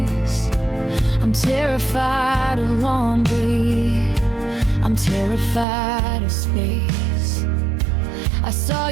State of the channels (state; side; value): drops out; left; at 5.7 s